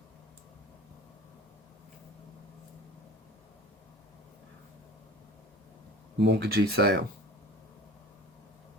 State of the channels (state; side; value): normal; both; correlation 0.39